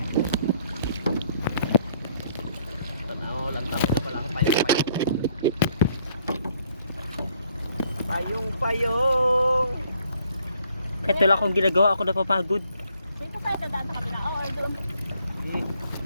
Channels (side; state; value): both; inverted; correlation -0.66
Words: Tanaw lang tawag na palang payong-payong. Payong-payong. Kahit wala akong ginagawa, ako napapagod. Dito tayo dadaan sa kabila. Oo, doon. Sige.